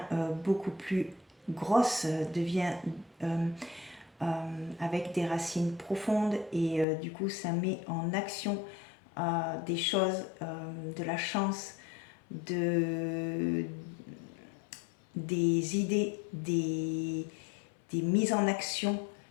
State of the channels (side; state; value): right; drops out; at 6.9 s